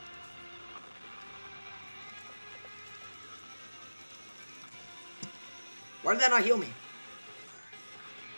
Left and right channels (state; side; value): inverted; both; correlation -1.00